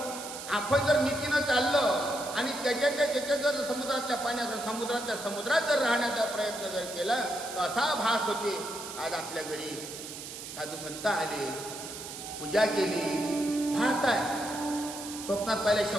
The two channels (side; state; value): right; noise; hiss, 10 dB below the sound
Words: आपण जर नीतीनं चाललं आणि त्याच्या जर समुद्रातल्या पाण्याचा समुद्रात जर राहण्याचा प्रयत्न जर केला तर असा भास होते. आज आपल्या घरी साधू संत आले, पूजा केली, भास आहे. स्वप्नात पाहिले